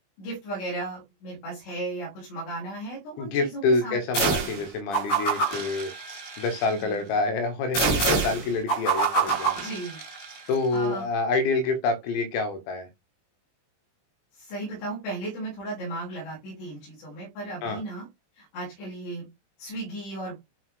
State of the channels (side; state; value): right; late; 20 ms